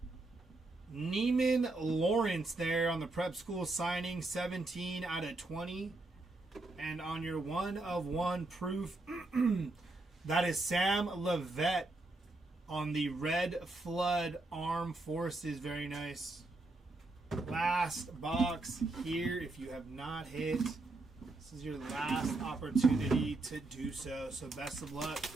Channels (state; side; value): quieter; left; 3.0 dB